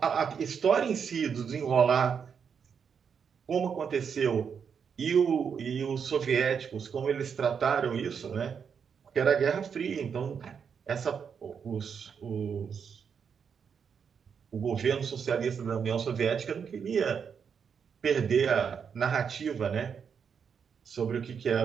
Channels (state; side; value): quieter; left; 6.8 dB